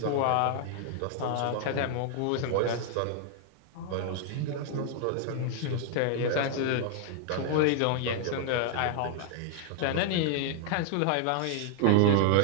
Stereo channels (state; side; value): different; both; correlation 0.00